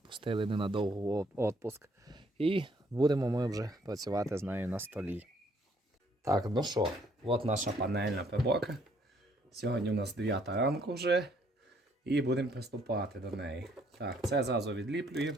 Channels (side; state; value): both; normal; correlation 0.66